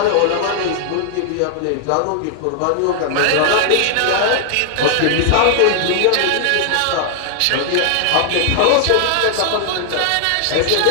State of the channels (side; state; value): both; different; correlation 0.00